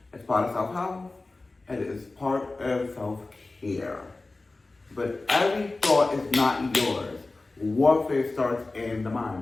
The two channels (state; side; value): quieter; right; 3.3 dB